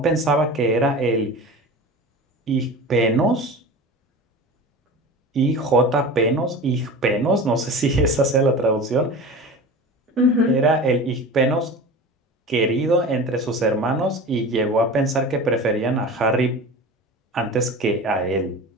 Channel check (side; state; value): both; normal; correlation 0.34